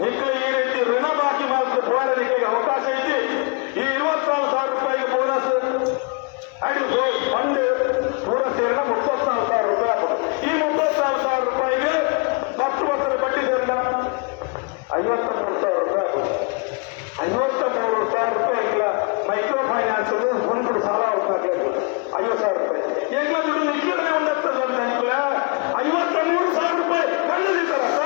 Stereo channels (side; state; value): right; quieter; 31.4 dB